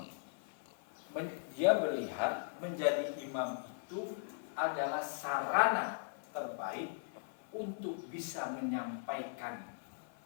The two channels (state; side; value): silent; right; 52 dB below the other